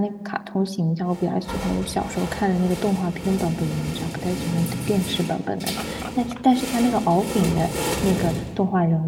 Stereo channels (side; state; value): both; identical; correlation 1.00